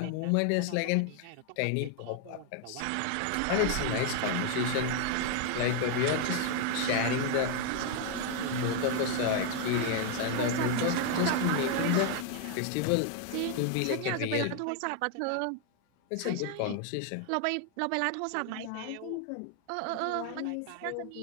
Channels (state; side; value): different; both; correlation 0.00